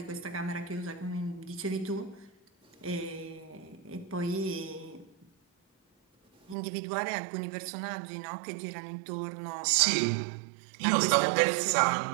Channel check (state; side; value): drops out; left; at 6.6 s